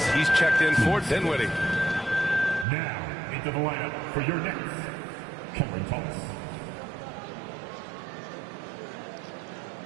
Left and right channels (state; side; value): drops out; left; at 2.7 s